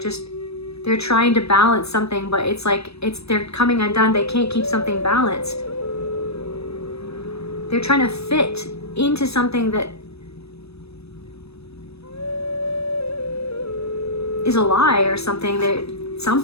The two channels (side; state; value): right; late; 0.78 ms